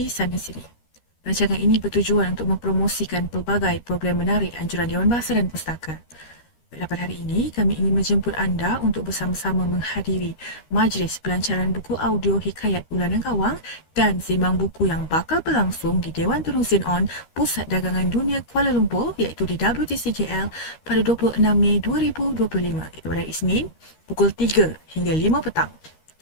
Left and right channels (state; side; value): late; right; 13 ms